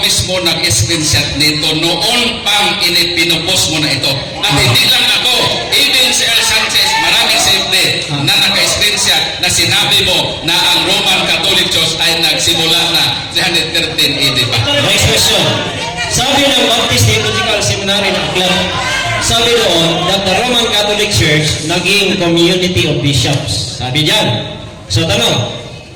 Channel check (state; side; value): identical; both; correlation 1.00